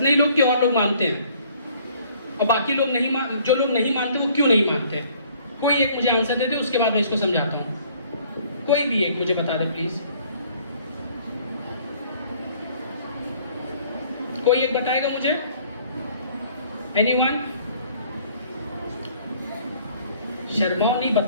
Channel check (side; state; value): both; inverted; correlation -0.58